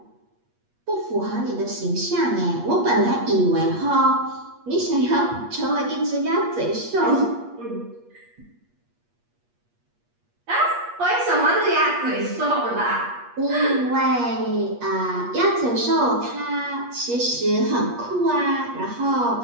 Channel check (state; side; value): late; left; 8.4 ms